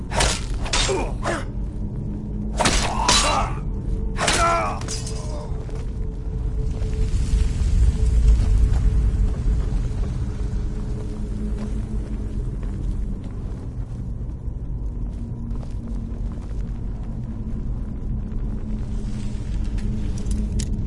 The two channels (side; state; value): both; identical; correlation 1.00